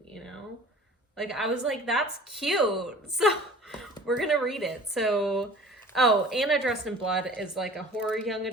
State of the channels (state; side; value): normal; both; correlation 0.46